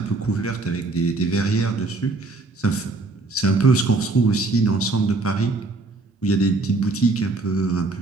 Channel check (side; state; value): left; quieter; 3.3 dB